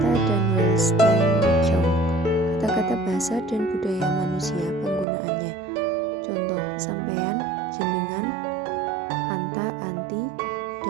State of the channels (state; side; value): drops out; left; at 5.1 s